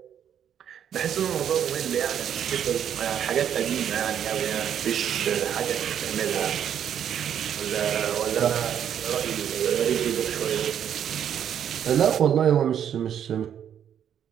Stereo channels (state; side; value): quieter; left; 9.2 dB